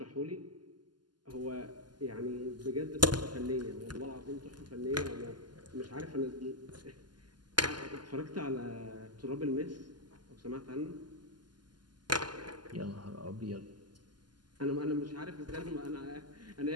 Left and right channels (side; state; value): left; late; 0.71 ms